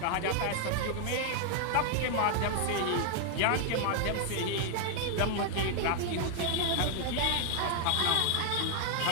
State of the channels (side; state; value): both; different; correlation 0.00